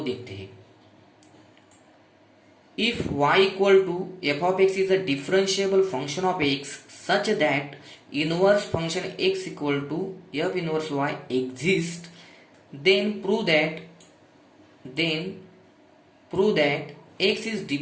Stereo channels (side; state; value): both; identical; correlation 1.00